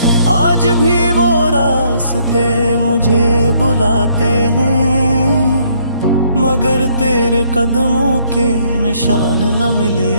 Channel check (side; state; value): both; inverted; correlation -0.67